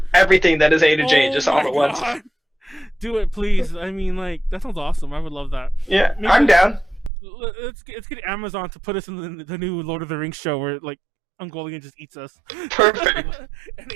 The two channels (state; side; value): drops out; left; at 7.1 s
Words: everything that is A-J just all at once. Do it, please. I mean, like, that sounds awesome. I would love that. Yeah, I'm down. Let's get Amazon to put us in the new Lord of the Rings show where like Ungoliant just eats us. Perfect.